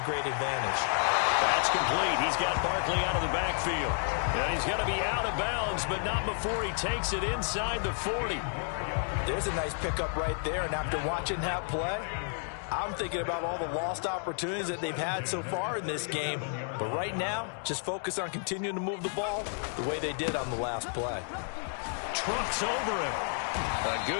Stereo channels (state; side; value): silent; right; 55 dB below the other